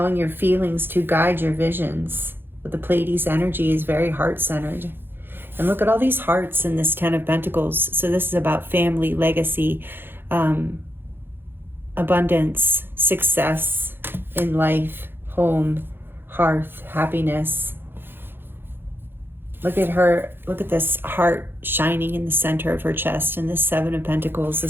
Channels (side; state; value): left; late; 0.10 ms